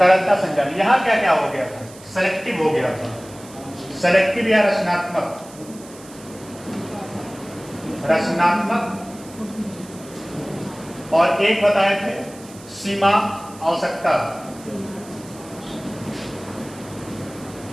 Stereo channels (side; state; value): right; noise; hiss, 20 dB below the sound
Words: संचालन, यहाँ क्या क्या हो गया था? सेलेक्टिव हो गया था, सेलेक्टिव या रचनात्मक, रचनात्मक। और एक बताए थे सीमा आवश्यकता,